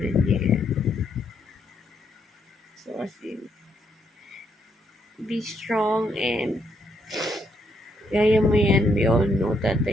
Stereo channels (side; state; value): both; normal; correlation 0.75